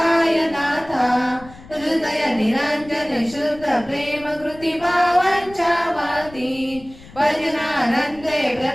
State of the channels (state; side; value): noise; left; rumble, 20 dB below the sound